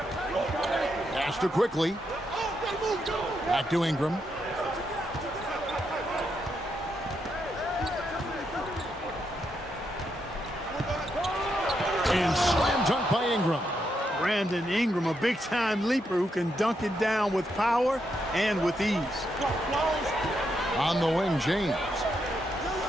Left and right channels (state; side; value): normal; both; correlation 0.81